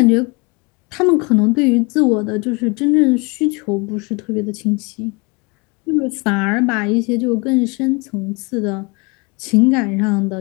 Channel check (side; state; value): right; quieter; 29.0 dB